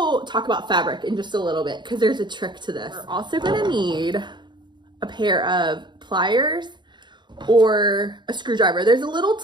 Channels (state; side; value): late; left; 0.22 ms